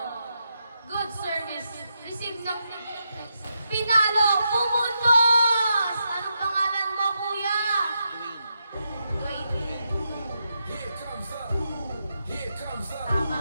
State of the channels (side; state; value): both; inverted; correlation -0.84